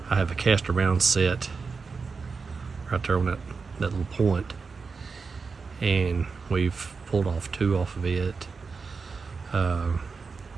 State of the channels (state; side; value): quieter; left; 4.9 dB